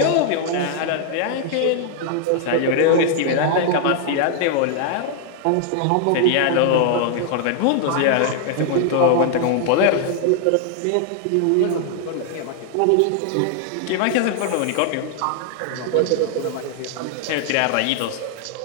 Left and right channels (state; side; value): different; both; correlation 0.00